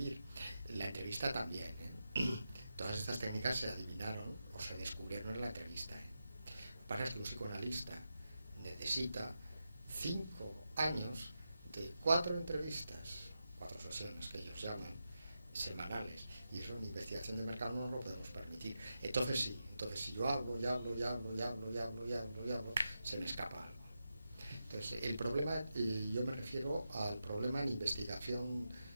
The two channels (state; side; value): inverted; both; correlation -0.89